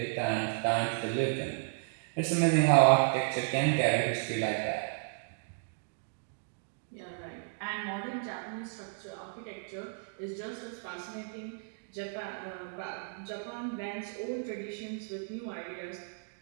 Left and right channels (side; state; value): left; silent; digital silence